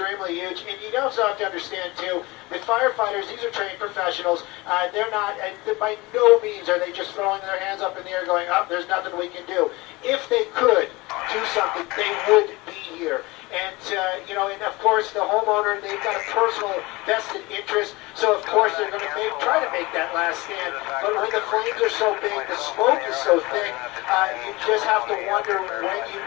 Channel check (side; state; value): right; quieter; 22.8 dB